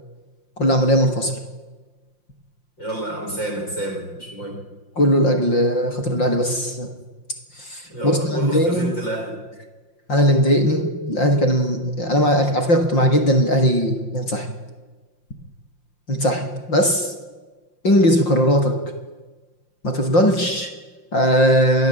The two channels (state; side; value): late; right; 5.7 ms